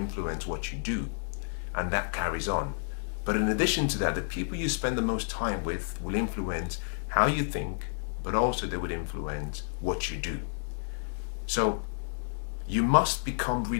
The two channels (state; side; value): silent; right; digital silence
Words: what you do. and that carries on. But in addition to that, the people you spend the most time with will influence how you think, but also they would influence what you do. So you must become